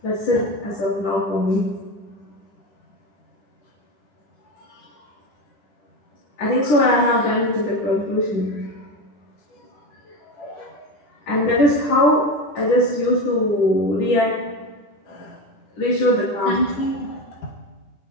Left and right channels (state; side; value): late; right; 10 ms